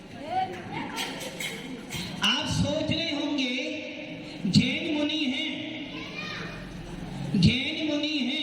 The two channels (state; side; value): identical; both; correlation 1.00